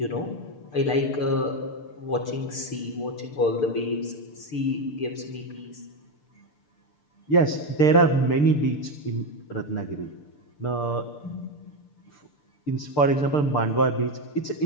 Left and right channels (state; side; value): late; right; 6.8 ms